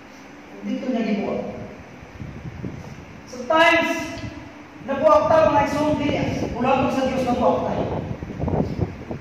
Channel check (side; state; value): both; identical; correlation 1.00